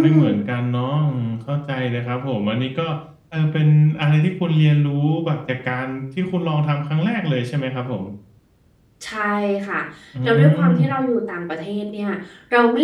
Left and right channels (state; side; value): identical; both; correlation 1.00